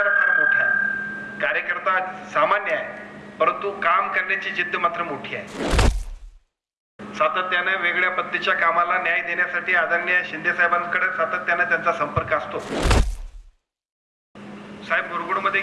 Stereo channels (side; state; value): both; identical; correlation 1.00